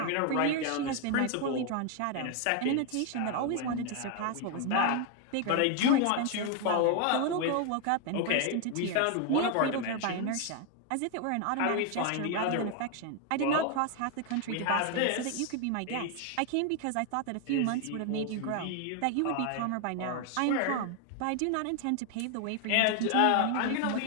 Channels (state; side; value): different; both; correlation 0.01